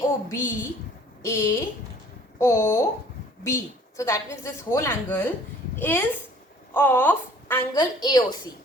AOB. So that means this whole angle is of angle AOC.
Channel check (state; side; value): normal; both; correlation 0.53